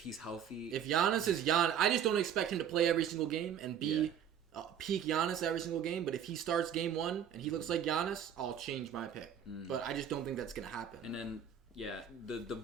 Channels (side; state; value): left; quieter; 8.8 dB